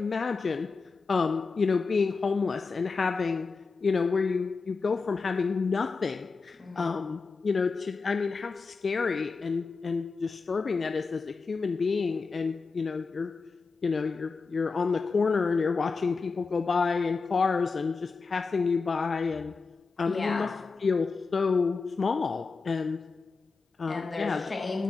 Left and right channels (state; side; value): quieter; right; 4.5 dB